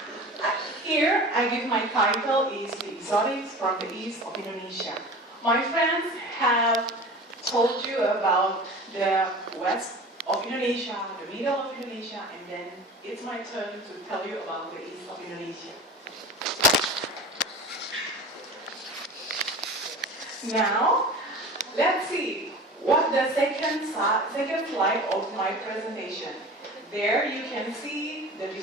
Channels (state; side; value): normal; both; correlation 0.36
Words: Here, I give my title is The Exotics from the East of Indonesia. My friends have told you about the west of Indonesia, the middle of Indonesia, and then it's my turn to tell you about the east of Indonesia. Now, let's see what the second slide of my presentation. There you can see the